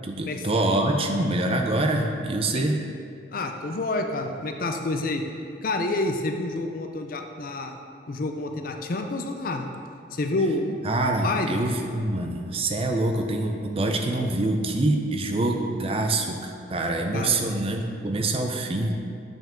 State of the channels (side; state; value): both; normal; correlation 0.48